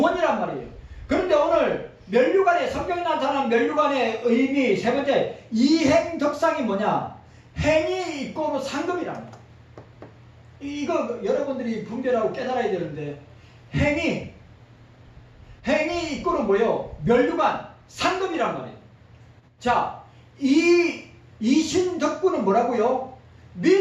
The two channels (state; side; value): identical; both; correlation 1.00